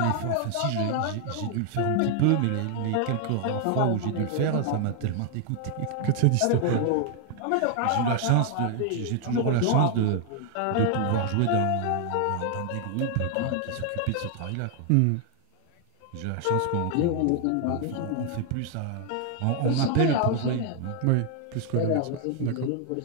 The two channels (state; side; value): different; both; correlation 0.00